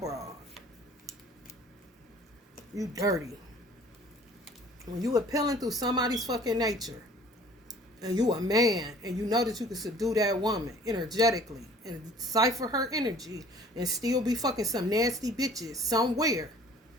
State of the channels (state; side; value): normal; both; correlation 0.51